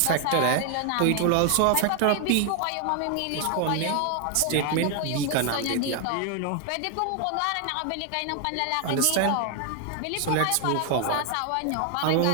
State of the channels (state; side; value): different; both; correlation 0.00